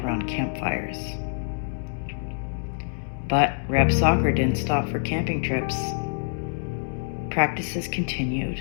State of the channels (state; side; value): silent; right; 61 dB below the other